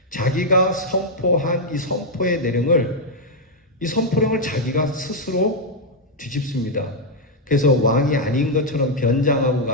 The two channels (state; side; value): normal; both; correlation -0.02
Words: 자기가 선포한 이 선포의 내용을 이 선포령을 자기가 스스로 뒤집습니다. 그래서 왕이 아닌 것처럼 변장하고